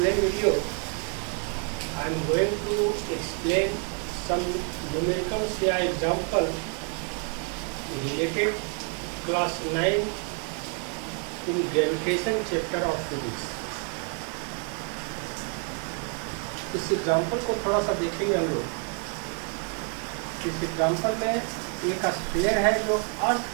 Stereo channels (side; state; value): left; quieter; 39.7 dB